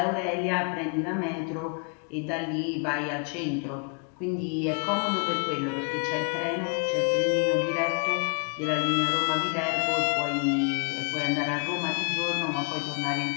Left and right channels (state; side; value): quieter; right; 39.1 dB